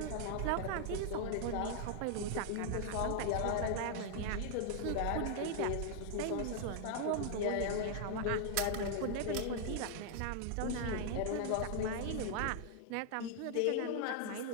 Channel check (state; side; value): different; both; correlation -0.01